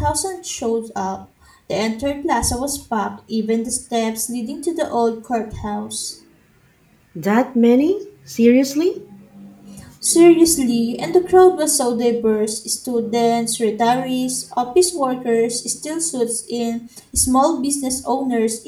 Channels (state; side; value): identical; both; correlation 1.00